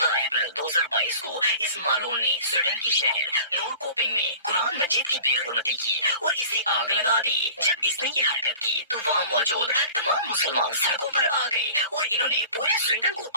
अप्रैल 2022 को इस मालून ने स्वीडन की शहर नोरकोपिंग में कुरान मजीद की बेहुरमती की और इसे आग लगा दी। जब इसने ये हरकत की तो वहाँ मौजूद तमाम मुसलमान सड़कों पर आ गए और इन्होंने पूरे स्वीडन को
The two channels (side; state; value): both; inverted; correlation -0.42